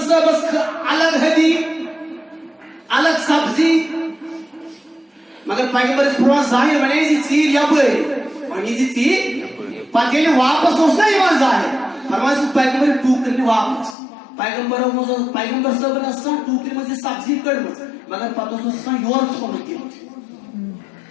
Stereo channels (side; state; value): right; drops out; at 14.0 s